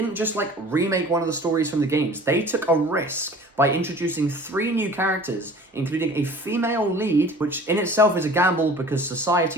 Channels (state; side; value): normal; both; correlation 0.45